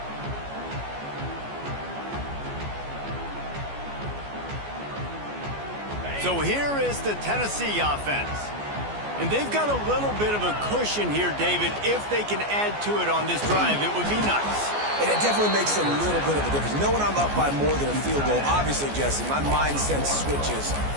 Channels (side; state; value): left; late; 14 ms